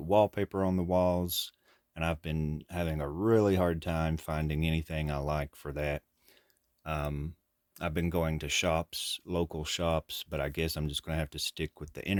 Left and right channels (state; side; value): identical; both; correlation 1.00